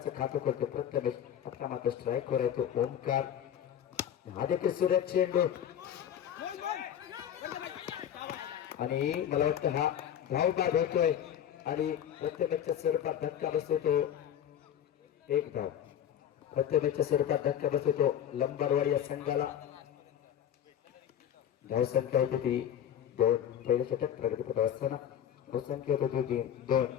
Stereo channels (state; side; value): quieter; right; 9.9 dB